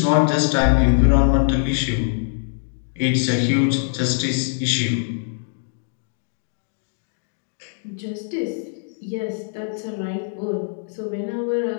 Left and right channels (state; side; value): silent; right; digital silence